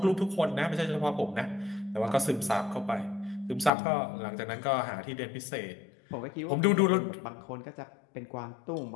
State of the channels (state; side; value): drops out; right; at 3.7 s